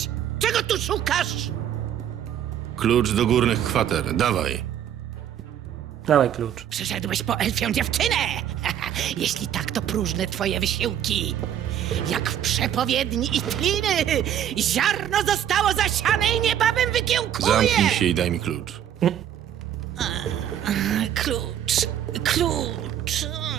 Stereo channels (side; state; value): left; quieter; 10.3 dB